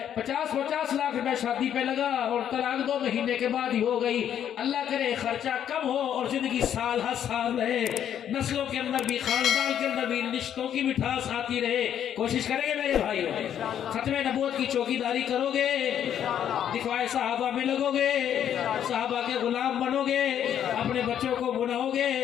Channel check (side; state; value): right; quieter; 9.7 dB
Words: 50-50 लाख रुपए शादी पे लगा और तलाक 2 महीने के बाद ही हो गई। अल्लाह करे खर्चा कम हो और जिंदगी साल हर साल रहे, नस्लों के अंदर भी, खानदान के अंदर भी रिश्तों की मिठास आती रहे। कोशिश करेंगे मेरे भाई, खत्मे नबूवत की चौकीदारी करोगे, दिखवाए साहबा में लगोगे, साहबा के गुलाम बनोगे, अपने बच्चों को बुलाओगे।